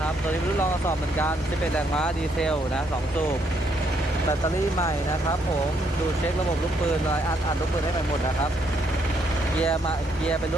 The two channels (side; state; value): both; normal; correlation 0.73